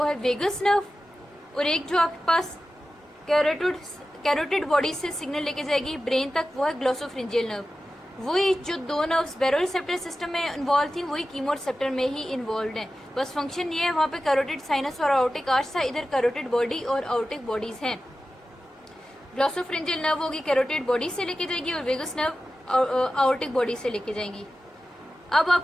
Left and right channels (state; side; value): normal; both; correlation 0.94